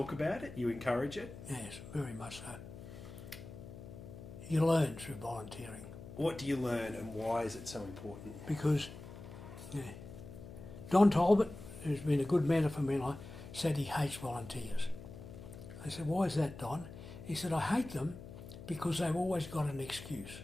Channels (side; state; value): left; noise; hum, 13 dB below the sound